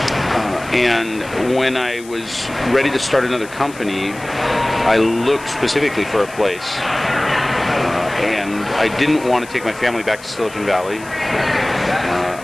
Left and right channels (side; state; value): left; noise; hiss, 19 dB below the sound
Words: And when I was ready to start another company, I looked specifically for a place. And I didn't want to take my family back to Silicon Valley.